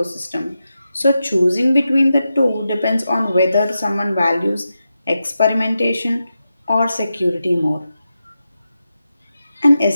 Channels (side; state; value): both; inverted; correlation -0.90